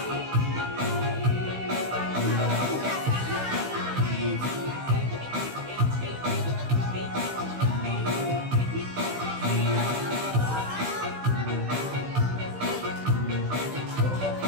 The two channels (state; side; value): late; left; 16 ms